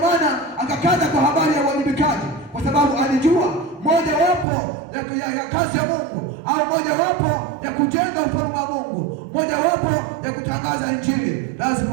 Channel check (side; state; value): left; drops out; at 4.5 s